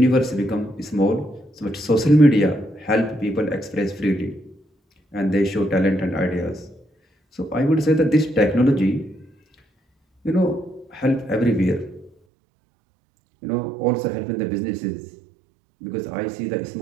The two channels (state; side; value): drops out; left; at 12.1 s